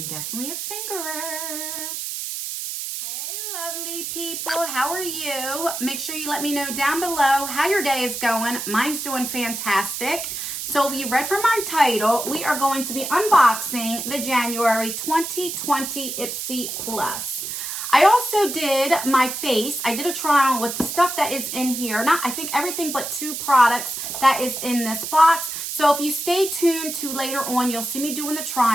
definitely a fingerer. Hey, lovely people. How are you? Make sure you let me know down below how your day is going. Mine's doing fantastic. So if you read from our title, we are going to be unboxing the January 2020 Ipsy Plus. I also did my face. I did a try on with the stuff that is in here. I think everything but 2 products that is in this box. So if you stay tuned to later on, you'll see me doing the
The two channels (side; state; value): right; noise; hiss, 5 dB below the sound